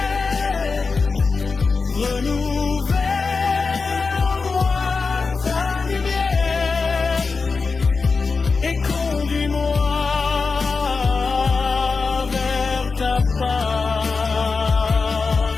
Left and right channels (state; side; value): quieter; right; 4.5 dB